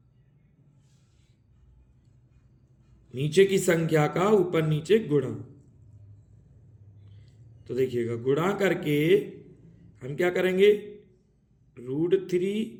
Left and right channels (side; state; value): both; identical; correlation 1.00